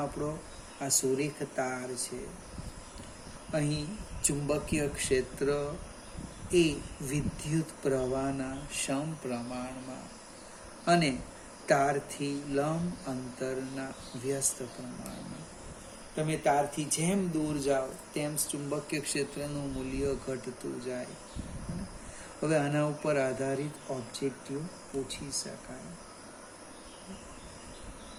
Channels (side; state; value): both; identical; correlation 1.00